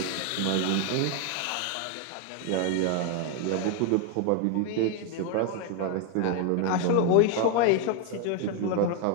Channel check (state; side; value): different; both; correlation 0.01